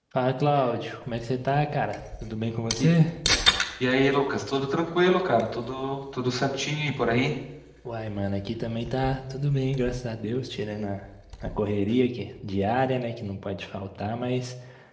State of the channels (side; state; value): both; identical; correlation 1.00